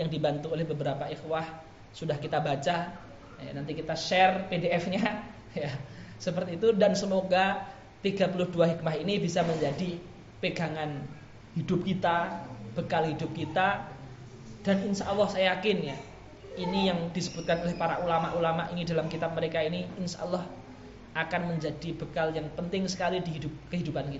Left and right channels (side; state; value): both; identical; correlation 1.00